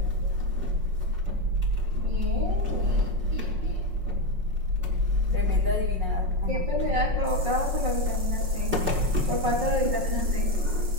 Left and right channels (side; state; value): left; late; 5.5 ms